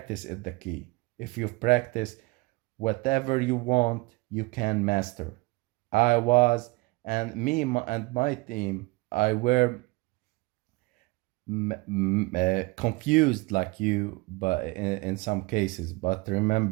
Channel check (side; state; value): left; quieter; 24.1 dB